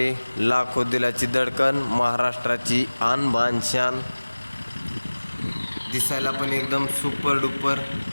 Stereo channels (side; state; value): both; inverted; correlation -1.00